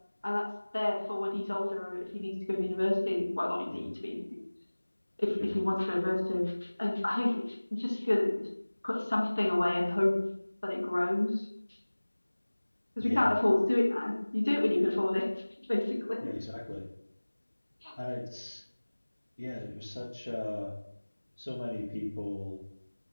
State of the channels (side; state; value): both; inverted; correlation -1.00